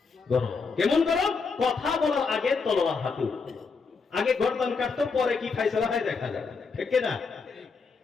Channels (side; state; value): right; quieter; 4.8 dB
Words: গরম। কেমন গরম? কথা বলার আগে তলোয়ার হাতে, আগে গর্দান কাটতো, পরে কি ফায়সালা হয় দেখা যায়, ঠিক না?